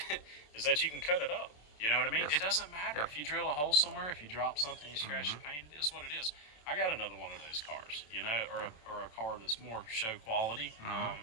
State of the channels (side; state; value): right; late; 27 ms